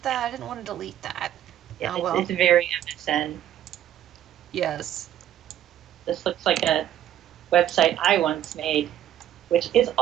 that? I didn't want to delete that. Yeah, oh, well. It's very MSN. Yes. This looks like a website I once made, which is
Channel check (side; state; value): left; quieter; 11.5 dB